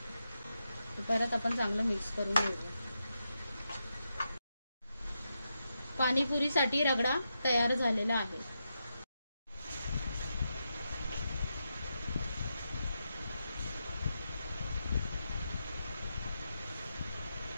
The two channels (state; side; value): inverted; both; correlation -0.86